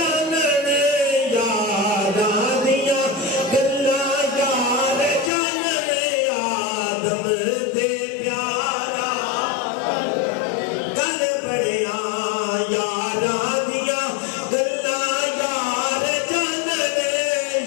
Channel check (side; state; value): right; drops out; at 5.3 s